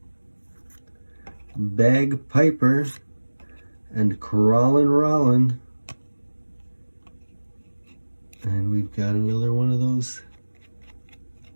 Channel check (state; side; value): inverted; both; correlation -1.00